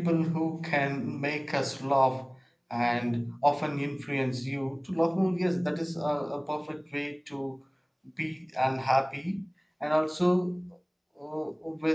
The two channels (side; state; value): both; identical; correlation 1.00